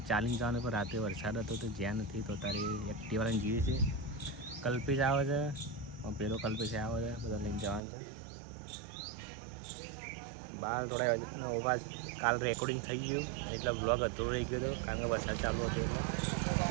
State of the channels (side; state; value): left; drops out; at 7.8 s